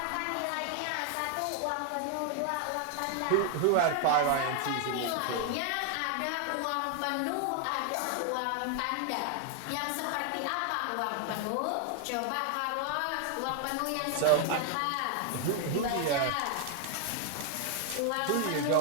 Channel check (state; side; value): different; both; correlation 0.00